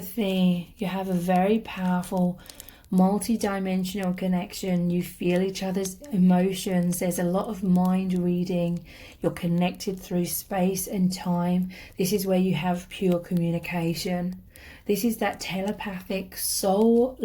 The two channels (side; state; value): both; identical; correlation 1.00